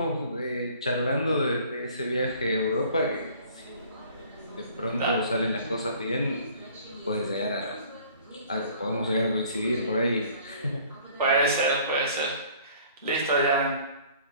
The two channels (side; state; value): both; inverted; correlation -0.53